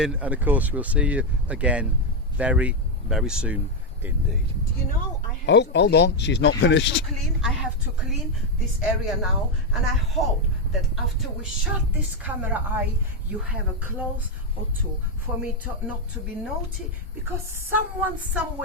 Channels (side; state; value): both; normal; correlation 0.04